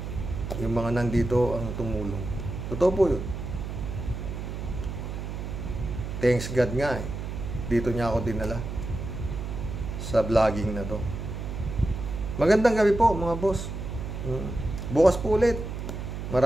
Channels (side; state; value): right; noise; hum, 6 dB below the sound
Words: Yung mga nandito ang tumulong. Totoo po yun. Thanks God nga, eh. Dito niya ako dinala sa vlogging na to. Magandang gabi po, mga boss. Bukas po ulit.